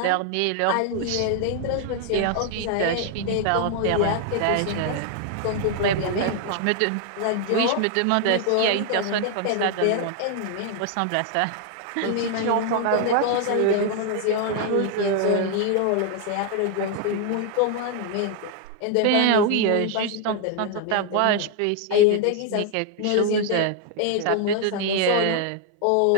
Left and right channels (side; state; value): both; different; correlation 0.00